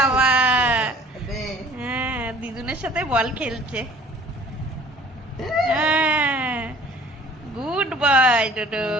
হ্যাঁ দিদুনের সাথে বল খেলছে। হ্যাঁ, গুড বয় ডোডো।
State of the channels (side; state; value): both; normal; correlation 0.51